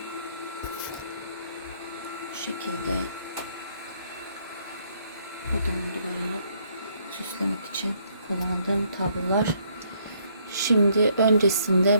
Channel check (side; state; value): both; inverted; correlation -0.68